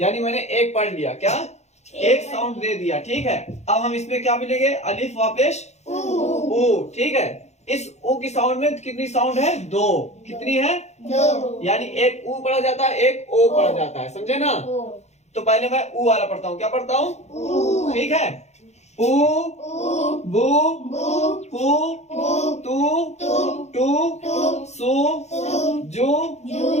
यानी मैंने एक पढ़ लिया। क्या? एक साउंड दे दिया, ठीक है? अब हम इसमें क्या मिलेंगे? अलिफ वापिश ऊ, ठीक है? इस ऊ की साउंड में कितनी साउंड है? दो। कितनी है? दो। यानी एक ऊ पढ़ा जाता है, एक ओ पढ़ा जाता है, समझे ना? तो पहले मैं ऊ वाला पढ़ता हूँ। क्या पढ़ता हूँ? ठीक है? ऊ, बू, पू, तू, टू, सू, जू,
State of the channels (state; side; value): late; right; 0.32 ms